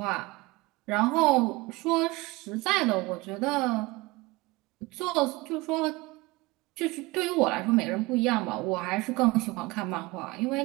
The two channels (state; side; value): quieter; left; 22.3 dB